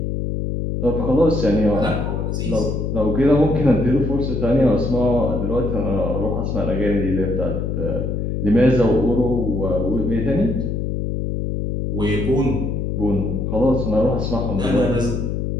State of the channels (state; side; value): noise; left; hum, 1 dB below the sound